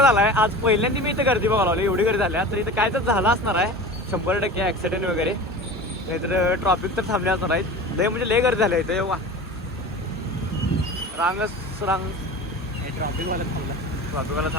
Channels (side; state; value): both; normal; correlation 0.35